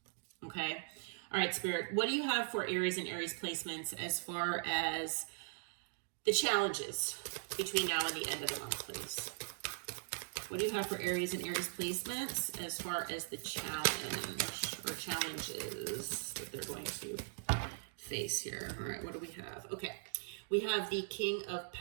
Okay. All right, Spirit, what do you have for Aries and Aries placements as far as the challenges between now and the end of the month, please? What do you have for Aries and Aries placements as far as the challenge or challenges that they're going to face here? All right, what do we have? Okay, we have the King of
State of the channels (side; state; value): left; silent; digital silence